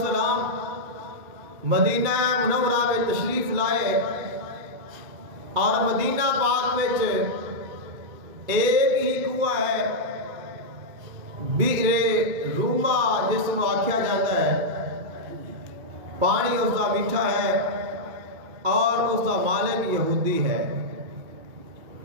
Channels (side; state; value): left; late; 2.3 ms